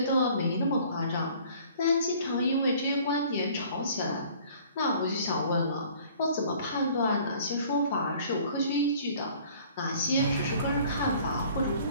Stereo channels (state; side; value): inverted; both; correlation -0.53